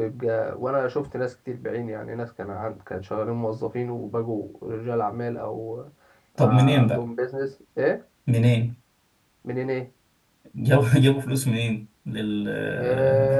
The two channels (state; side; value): identical; both; correlation 1.00